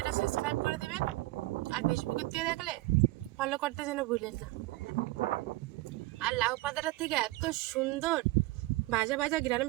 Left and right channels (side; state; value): left; quieter; 19.6 dB